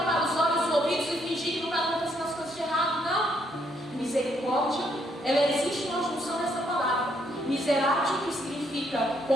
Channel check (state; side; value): normal; both; correlation 0.72